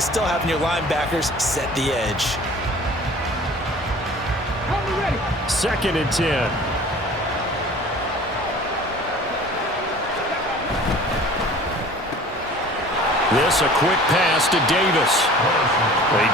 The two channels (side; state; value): both; normal; correlation 0.46